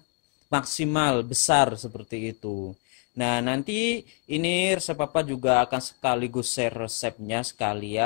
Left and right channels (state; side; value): quieter; right; 35.7 dB